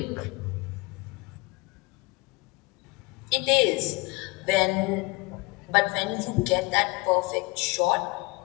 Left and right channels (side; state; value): right; quieter; 24.7 dB